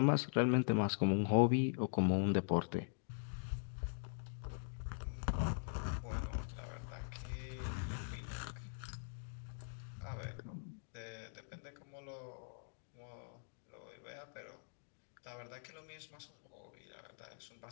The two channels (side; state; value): right; silent; digital silence